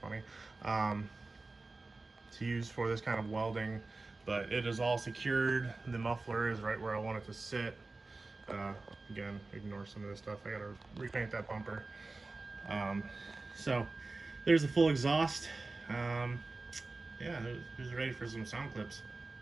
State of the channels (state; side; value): quieter; left; 3.4 dB